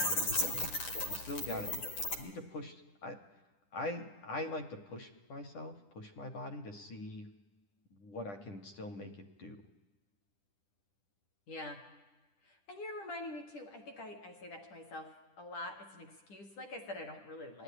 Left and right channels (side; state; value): right; late; 10 ms